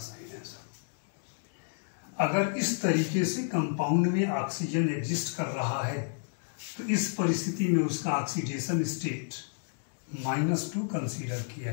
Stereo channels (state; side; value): silent; right; digital silence